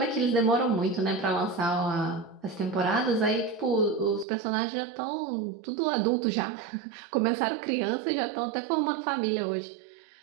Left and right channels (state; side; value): drops out; left; at 4.2 s